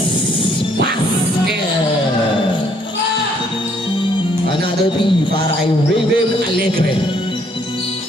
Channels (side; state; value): both; normal; correlation 0.66